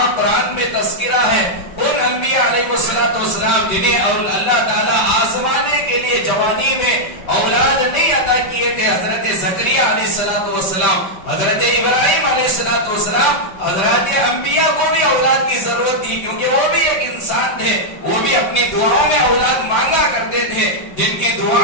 قرآن میں تذکرہ ہے، ان انبیاء علیہ السلام جنہیں اللہ تعالیٰ آزمانے کے لیے جوانی میں اولاد نہیں عطا کیے تھے حضرت زکریا علیہ السلام، حضرت ابراہیم علیہ السلام، حضرت انبیاء کو بھی اولاد کی ضرورت تھی، کیونکہ وہ بھی ایک انسان تھے، وہ بھی اپنی دعاؤں میں اولاد مانگا کرتے تھے، جن کی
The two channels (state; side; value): late; right; 5.2 ms